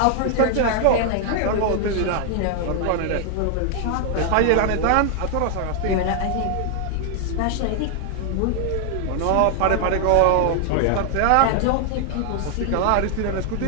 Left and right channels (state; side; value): different; both; correlation 0.00